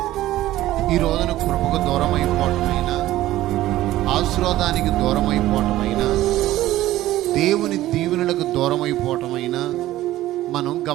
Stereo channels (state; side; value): quieter; left; 15.1 dB